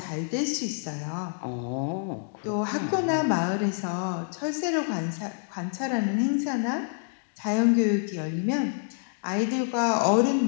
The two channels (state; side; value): silent; right; digital silence